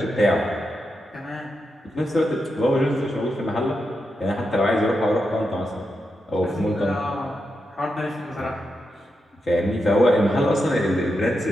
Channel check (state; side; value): normal; both; correlation 0.86